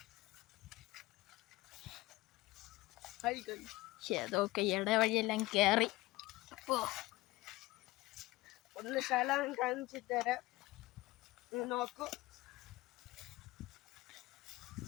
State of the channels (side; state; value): right; quieter; 19.7 dB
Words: അതൊക്കെ ഇടവഴിയെല്ലാം കയറി. ഒന്ന് സ്ഥലം കാണിച്ചു തരാം, നോക്കൂ.